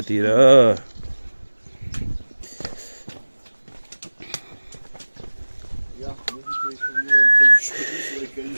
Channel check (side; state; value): both; inverted; correlation -1.00